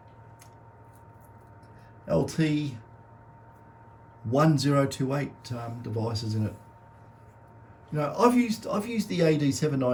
LT 1028 devices in it. You know, I've used the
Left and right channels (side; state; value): both; identical; correlation 1.00